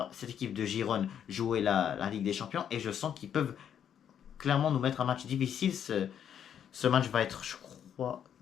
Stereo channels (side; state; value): right; quieter; 9.0 dB